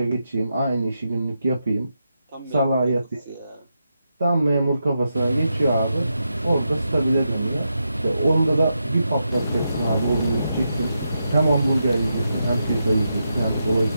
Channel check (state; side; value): inverted; both; correlation -0.85